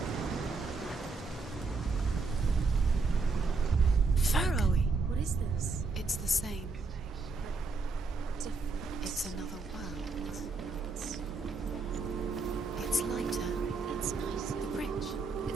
Pharaoh. What is this? It's the same. Different. It's another world. It's lighter. That's nice. The bridge.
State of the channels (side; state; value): left; quieter; 4.2 dB